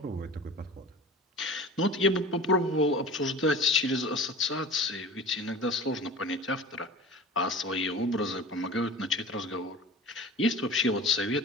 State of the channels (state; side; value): normal; both; correlation 0.37